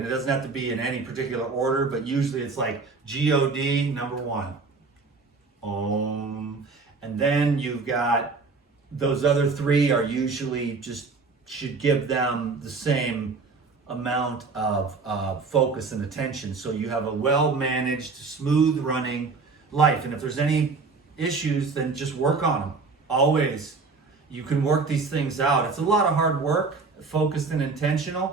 it doesn't have to be in any particular order, but usually it's like G-O-D, number 1. And then you've got those other 3 are usually just, should give them the same amount of focus and attention. So you have a well-managed, smooth-running life. And if there's any issues, then just work on them. Always. You can work these things out. It's a lot of hard work, focused and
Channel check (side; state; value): left; quieter; 4.3 dB